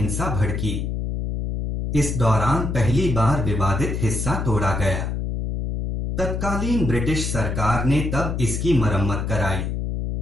भड़की। इस दौरान पहली बार विवादित हिस्सा तोड़ा गया। तत्कालीन ब्रिटिश सरकार ने तब इसकी मरम्मत कराई।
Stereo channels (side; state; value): left; noise; hum, 2 dB below the sound